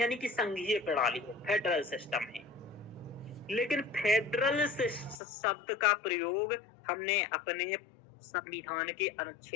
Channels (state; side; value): drops out; right; at 5.2 s